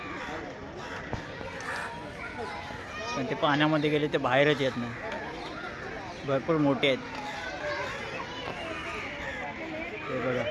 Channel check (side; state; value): both; identical; correlation 1.00